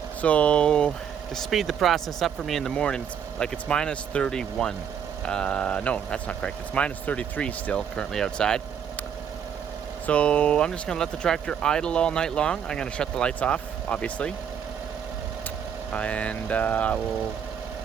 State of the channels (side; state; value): left; quieter; 8.0 dB